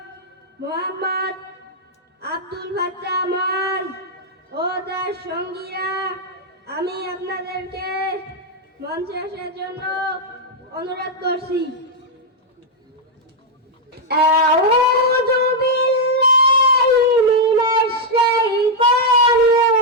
মোহাম্মদ আব্দুল ফাত্তাহ মাজ ও তার সঙ্গীরা। আমি আপনাদেরকে মঞ্চে আসার জন্য অনুরোধ করছি। আউযু বিল্লাহি মিনাশ শাইতানির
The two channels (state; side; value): normal; both; correlation -0.02